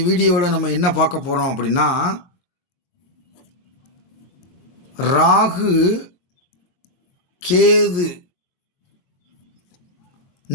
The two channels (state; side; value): late; right; 23 ms